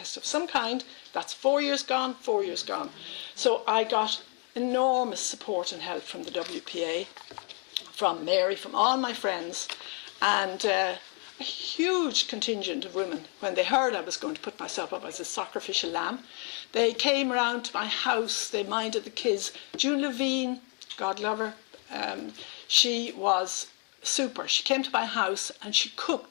of some kind, that's 4 years gone, 4 years gone. So I got enormous support and help from the WPA, from Mary, from all my friends, and a huge contingent of women. When they heard I was going to put myself up as a sacrificial lamb, they came round to my house, they minded the kids. June Levine, God love her, she was super. She came to my house and she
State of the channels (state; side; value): quieter; right; 38.2 dB